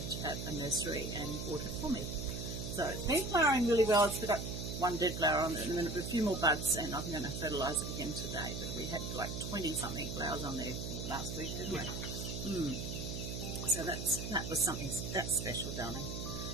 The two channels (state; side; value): noise; right; hum, 5 dB below the sound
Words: at a nursery and bought it for me. So it's been flowering really well. It's got one dead flower on it and then a few more buds, and I'm going to fertilise it again today. But we had like 20-something flowers on there last week, didn't we? So that was something that's special, darling.